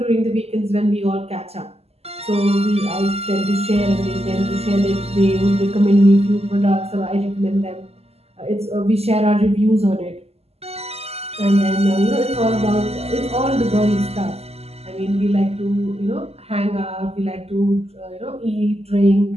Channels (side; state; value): left; late; 0.29 ms